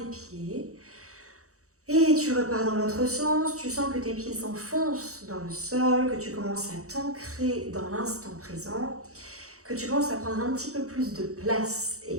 pieds. Et tu repars dans l'autre sens, tu sens que tes pieds s'enfoncent dans le sol, que tu commences à t'ancrer dans l'instant présent, que tu commences à prendre un petit peu plus de place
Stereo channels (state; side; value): late; left; 0.65 ms